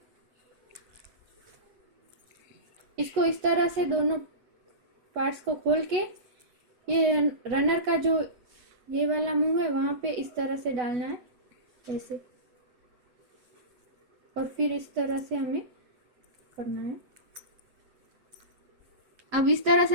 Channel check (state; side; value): late; left; 8.1 ms